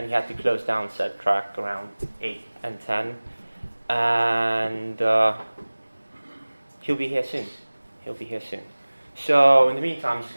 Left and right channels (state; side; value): inverted; both; correlation -1.00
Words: he had to close down said track around 8 and 10. And he'll be here soon. So in the meantime, I'm just